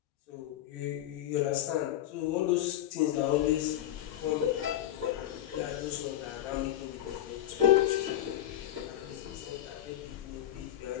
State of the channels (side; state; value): right; quieter; 12.3 dB